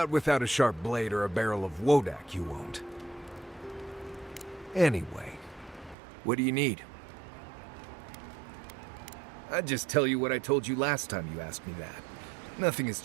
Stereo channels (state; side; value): drops out; left; at 6.0 s